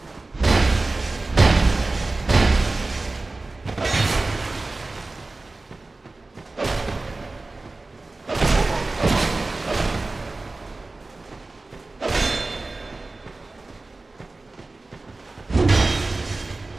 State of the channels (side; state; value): left; quieter; 3.3 dB